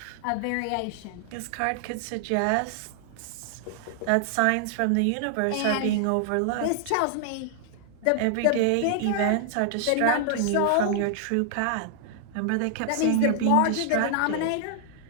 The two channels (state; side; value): different; both; correlation -0.01